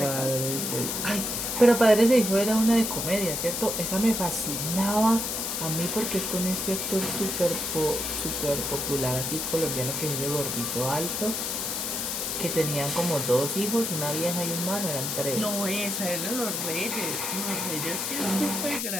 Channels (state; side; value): noise; left; hiss, 2 dB below the sound